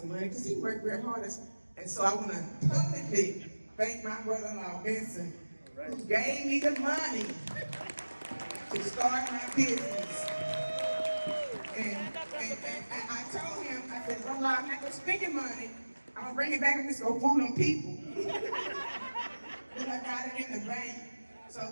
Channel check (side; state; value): both; inverted; correlation -1.00